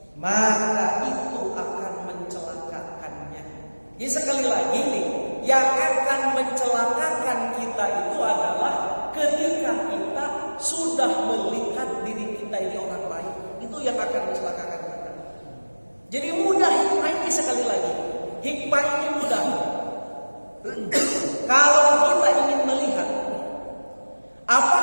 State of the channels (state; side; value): inverted; both; correlation -1.00